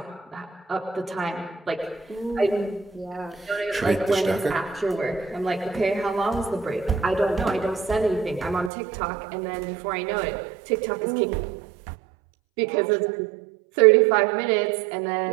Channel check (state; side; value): drops out; left; at 8.7 s